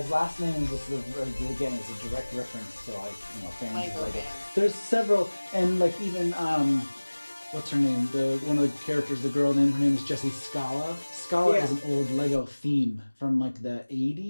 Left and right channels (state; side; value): inverted; both; correlation -1.00